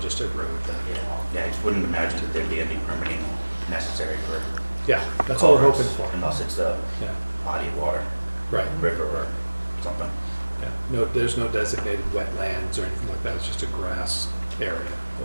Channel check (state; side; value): inverted; both; correlation -1.00